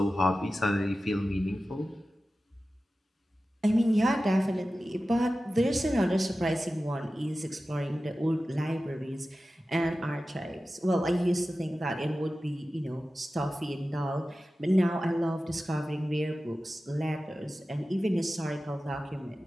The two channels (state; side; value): normal; both; correlation 0.94